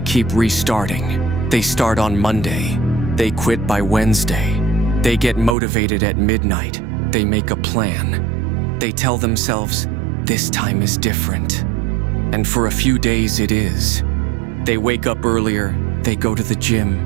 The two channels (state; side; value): drops out; left; at 5.6 s